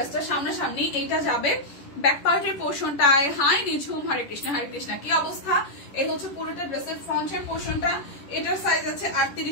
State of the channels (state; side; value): late; right; 11 ms